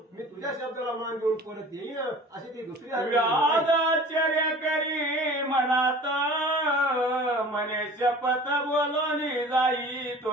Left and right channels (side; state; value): both; normal; correlation 0.43